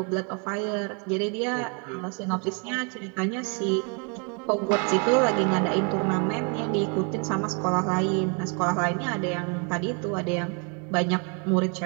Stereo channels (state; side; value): quieter; left; 35.5 dB